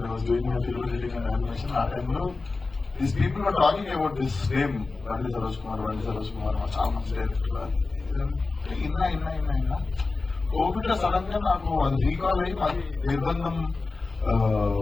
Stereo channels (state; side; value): quieter; right; 3.8 dB